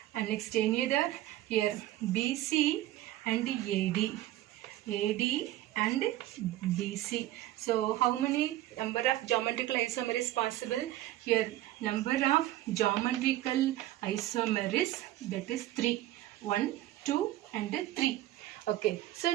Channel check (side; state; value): left; quieter; 14.9 dB